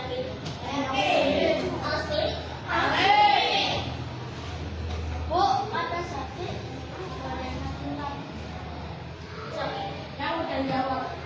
Yakin. Asli? Asli. Bu, ada sakit? Sakit? Yang udah jawab.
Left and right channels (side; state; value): both; identical; correlation 1.00